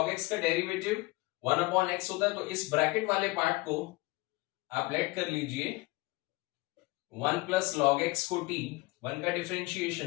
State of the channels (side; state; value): right; quieter; 22.3 dB